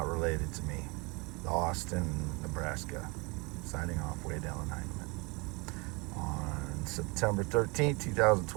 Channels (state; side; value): quieter; left; 28.4 dB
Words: related to me. Austin, Nebraska. Signing off, Wade Alan Heineman. On September 13th,